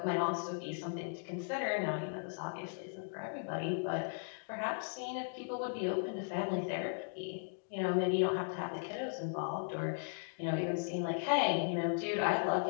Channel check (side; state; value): right; silent; digital silence